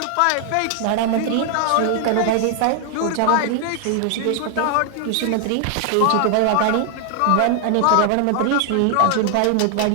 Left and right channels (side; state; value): both; different; correlation 0.00